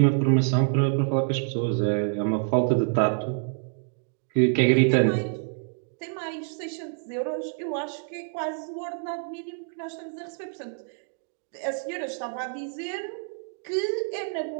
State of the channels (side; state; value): left; silent; 60 dB below the other